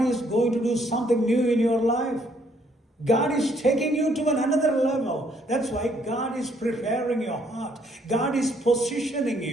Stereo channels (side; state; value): both; normal; correlation 0.67